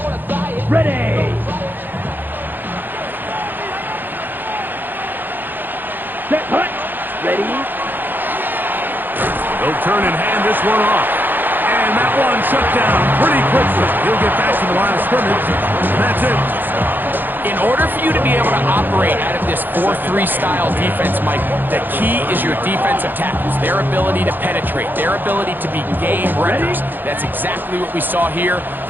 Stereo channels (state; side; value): late; left; 0.090 ms